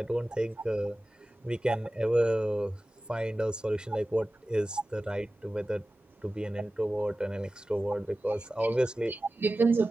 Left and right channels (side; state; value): both; normal; correlation 0.96